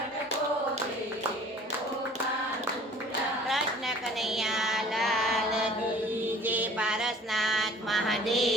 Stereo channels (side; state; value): both; normal; correlation 0.50